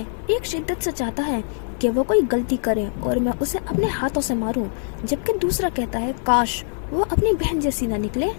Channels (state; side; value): silent; right; 59 dB below the other